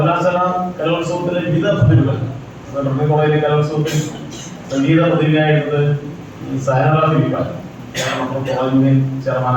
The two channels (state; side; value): identical; both; correlation 1.00